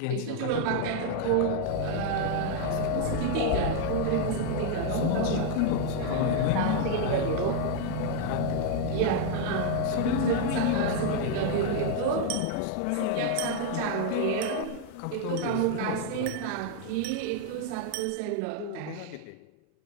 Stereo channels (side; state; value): both; different; correlation 0.00